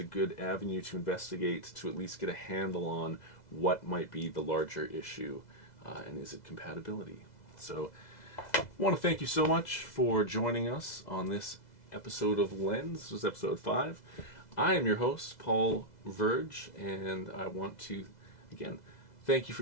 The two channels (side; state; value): right; late; 2.0 ms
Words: good avenue to investigate, to at least get a handle on what might be the larger issue, and is it compatibility. So I want to thank you so much for joining us on this episode of Lens. This was episode 5. I am your host, Paul Verge, and I want to, again, thank you for